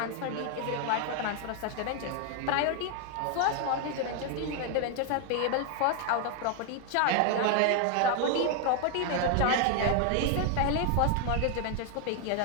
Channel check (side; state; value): both; different; correlation 0.00